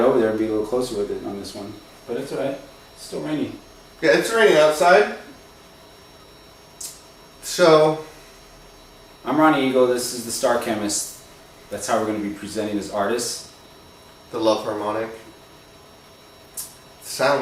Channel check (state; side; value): identical; both; correlation 1.00